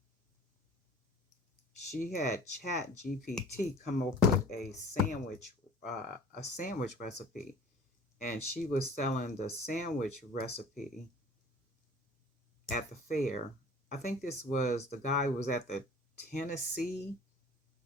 she had Chat GPT come up with a sandwich recipe, and she was selling the sandwich recipe at the fair. I think the guy was at the Tennessee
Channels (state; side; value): normal; both; correlation 0.46